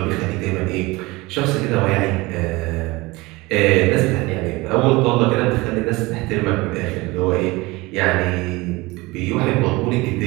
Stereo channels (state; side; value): quieter; left; 22.3 dB